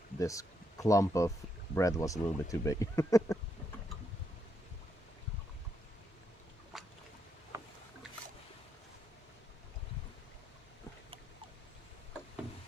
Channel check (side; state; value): both; normal; correlation 0.78